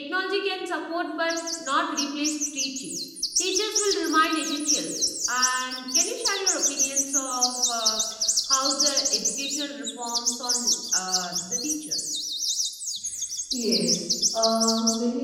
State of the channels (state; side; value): identical; both; correlation 1.00